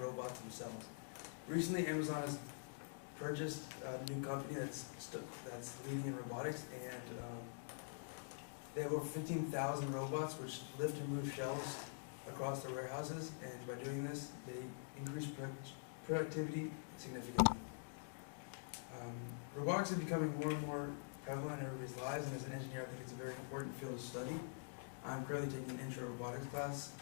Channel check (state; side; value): silent; right; digital silence